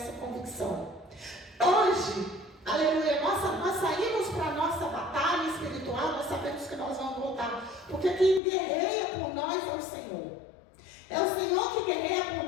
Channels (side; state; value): right; drops out; at 8.4 s